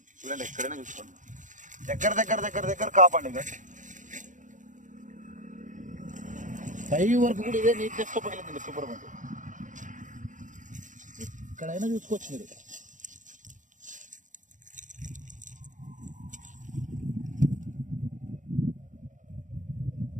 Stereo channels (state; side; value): late; left; 0.37 ms